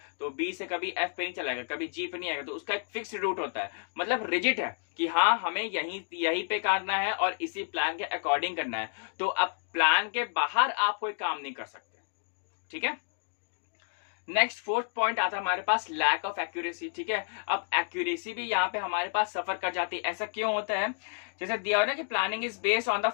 तो बी से कभी एफ पे नहीं चलाएगा, कभी जी पे नहीं आएगा, तो उसका एक फिक्स रूट होता है, मतलब रिजिड है कि हाँ हमें यहीं पे करना है और इसी प्लान के अकॉर्डिंग करना है। तो अब प्लान के बाहर आप कोई काम नहीं कर सकते, ठीक है। नेक्स्ट फोर्थ पॉइंट आता है हमारे पास लैक ऑफ एक्यूरेसी, ठीक है। अब एक्यूरेसी भी यहाँ पे हमारे पास सफर कर जाती है। ऐसा क्यों होता है? जैसे दिया हुआ ना कि planning is based on the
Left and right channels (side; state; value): right; silent; digital silence